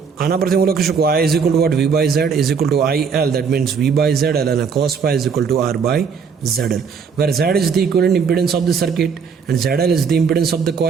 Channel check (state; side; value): quieter; left; 6.0 dB